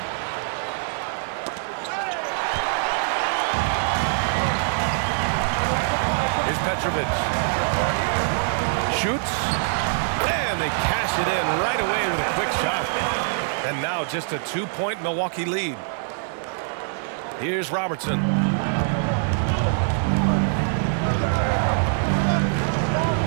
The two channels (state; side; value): silent; left; digital silence